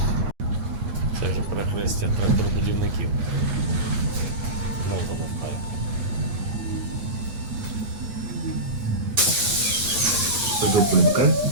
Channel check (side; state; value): left; late; 9.5 ms